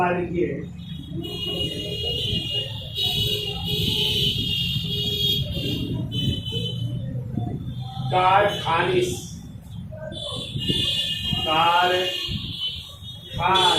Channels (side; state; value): both; identical; correlation 1.00